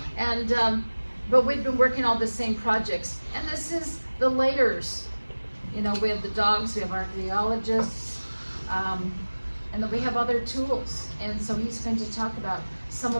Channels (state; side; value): inverted; both; correlation -1.00